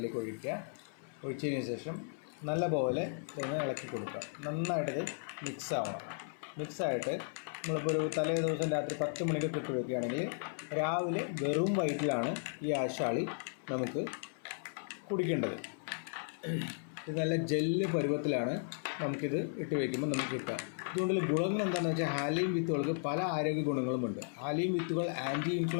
ഒഴിച്ചതിന് ശേഷം നല്ലപോലെ ഇതൊന്ന് ഇളക്കി കൊടുക്കുക. നന്നായിട്ടത് മിക്സായിട്ട് നമ്മളിപ്പോൾ ഒരു തലേ ദിവസം രാത്രി 10 മണിക്ക് ഇട്ട് വയ്ക്കുകയാണെങ്കിൽ രാവിലെ വെറും വയറ്റിലാണ് ഈ ആശാളി നമുക്ക് കുടിക്കേണ്ടത്. ഇത് നല്ല ജെല്ല് പരുവത്തിലാണ് നമുക്കിത് ഇട്ട് വയ്ക്കുമ്പോൾ നമുക്ക് കിട്ടുക. ഇതുകൊണ്ടുള്ള ഗുണങ്ങൾ എന്താണെന്ന് വെച്ചാൽ, ഹാലീം വിത്തുകൾക്ക് പല ആരോഗ്യ ഗുണങ്ങളുമുണ്ട്. ഹാലീം വിത്തുകൾ ആൻറ്റി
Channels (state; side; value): silent; right; 54 dB below the other